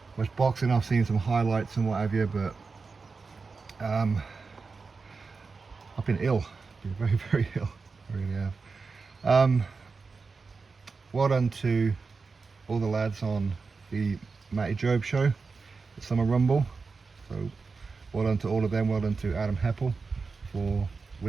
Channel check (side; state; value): left; quieter; 4.5 dB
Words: boxing. I've seen some highlights and what have you, but I've been ill. I've been very ill. I really have. Well done to all the lads on the Matty Job show, the Summer Rumble. So well done to all of them. Well done to Adam Heppel for